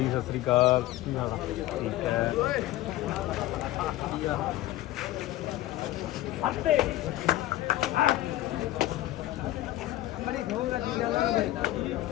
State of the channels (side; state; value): right; quieter; 15.6 dB